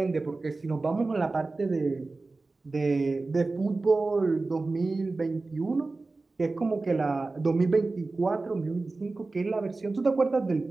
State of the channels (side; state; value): left; quieter; 3.5 dB